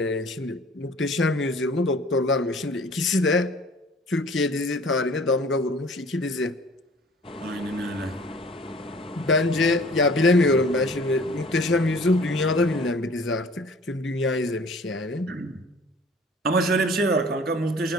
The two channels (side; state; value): both; normal; correlation 0.50